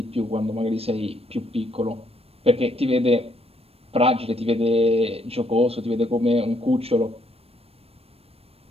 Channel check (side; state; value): left; late; 0.28 ms